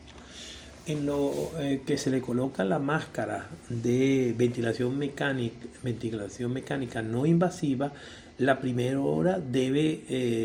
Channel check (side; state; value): both; identical; correlation 1.00